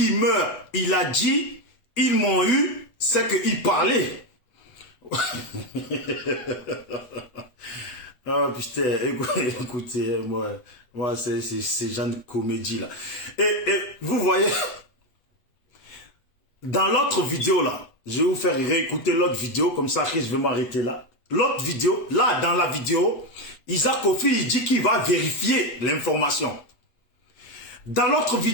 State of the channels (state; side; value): late; right; 8.0 ms